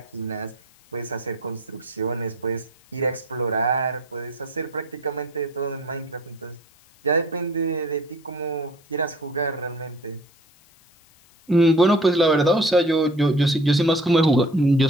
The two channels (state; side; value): noise; left; hiss, 29 dB below the sound